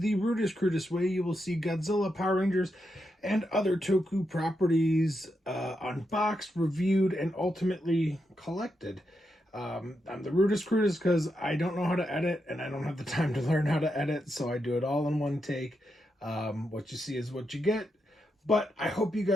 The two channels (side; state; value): both; normal; correlation 0.84